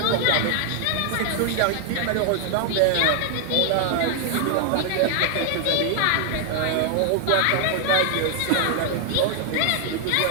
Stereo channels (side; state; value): both; different; correlation 0.00